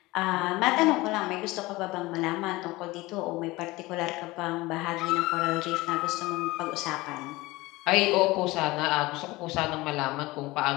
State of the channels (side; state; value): right; quieter; 20.6 dB